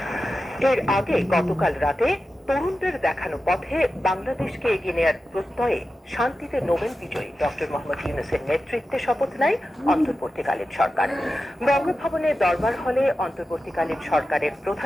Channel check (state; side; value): normal; both; correlation 0.92